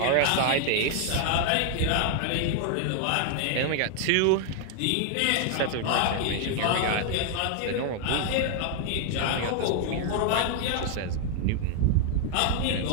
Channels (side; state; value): both; different; correlation 0.00